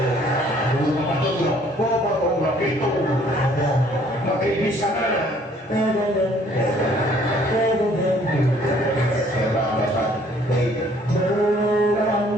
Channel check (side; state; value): both; normal; correlation 0.60